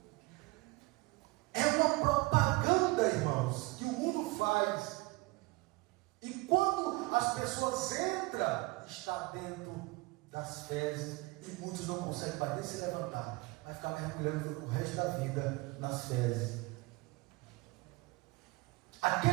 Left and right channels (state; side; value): quieter; left; 23.3 dB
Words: É uma propaganda, irmãos, que o mundo faz. E quando as pessoas entram, está dentro das fezes, e muitos não conseguem mais nem se levantar. Vai ficar mergulhando o resto da vida nas fezes.